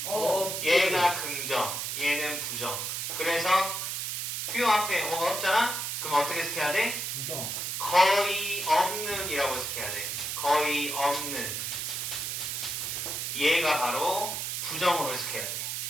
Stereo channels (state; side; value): noise; right; hiss, 3 dB below the sound